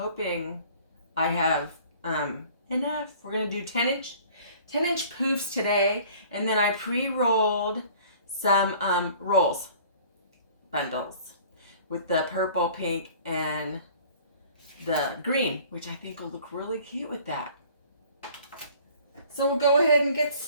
I have enough. We're going to do 10-inch poofs today, and then I pre-rolled some bundles with the purple, pink, and the green, which I think will look really cute with that. So we'll go ahead and get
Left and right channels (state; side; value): inverted; both; correlation -0.50